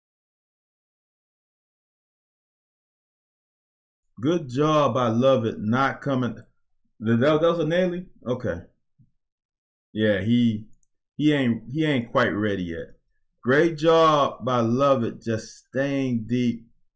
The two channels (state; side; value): identical; both; correlation 1.00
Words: Good job by Lovett not coming. That was a Naily? Okay. Yeah, he ain't quite ready yet. Great job by Lovett just staying deep